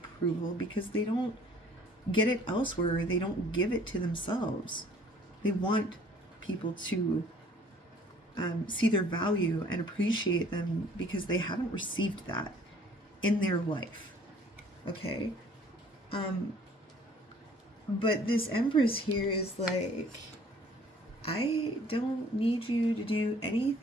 because they don't get it elsewhere, or they don't give it to themselves. They want people to see their value and appreciate them because they haven't received that in their life. Okay? But this Empress here is like, I don't need you to do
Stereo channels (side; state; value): both; normal; correlation 0.55